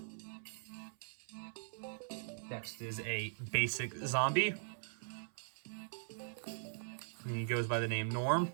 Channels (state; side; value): silent; left; 51 dB below the other